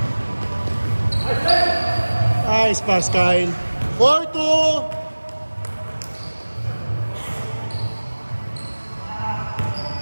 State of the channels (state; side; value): inverted; both; correlation -1.00